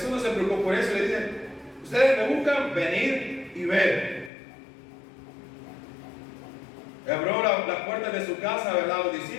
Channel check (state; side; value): drops out; right; at 4.3 s